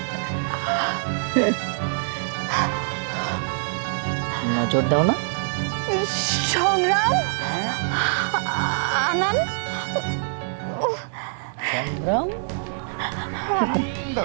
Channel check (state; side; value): silent; left; digital silence